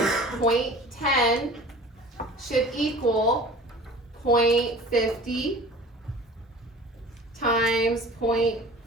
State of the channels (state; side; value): normal; both; correlation 0.42